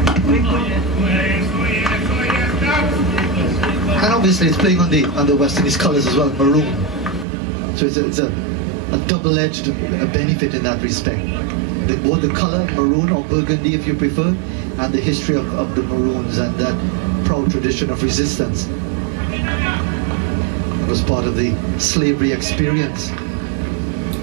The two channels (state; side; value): drops out; left; at 7.2 s